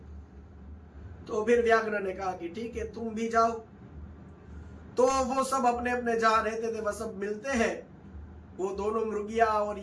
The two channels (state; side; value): identical; both; correlation 1.00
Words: तो फिर व्याघ्र ने कहा कि ठीक है तुम भी जाओ। तो वो सब अपने अपने जहां रहते थे वह सब मिलते हैं। वो दोनों मृगिया और